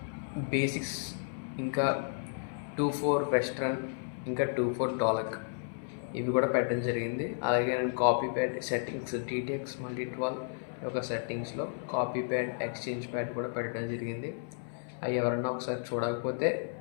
బేసిక్స్, ఇంకా 2/4 వెస్ట్రన్, ఇంకా 2/4 డోలక్ ఇవి కూడా పెట్టడం జరిగింది. అలాగే నేను copy pad settings TTX Multi-12 యొక్క సెట్టింగ్స్లో కాపీ ప్యాడ్, ఎక్స్చేంజ్ ప్యాడ్ కూడా పెట్టడం జరిగింది. అవి ఎవరన్నా ఒకసారి చూడకపోతే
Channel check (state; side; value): silent; right; 56 dB below the other